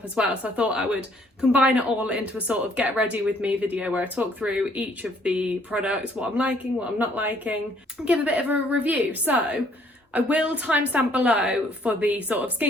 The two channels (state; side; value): normal; both; correlation 0.64